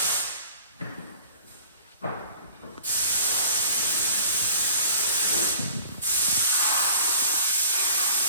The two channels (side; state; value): both; inverted; correlation -0.47